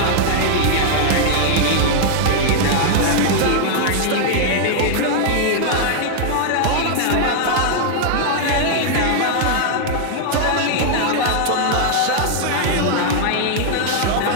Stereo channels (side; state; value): both; different; correlation -0.01